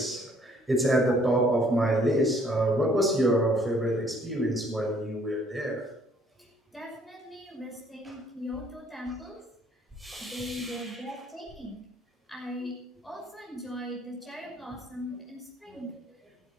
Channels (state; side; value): normal; both; correlation 0.61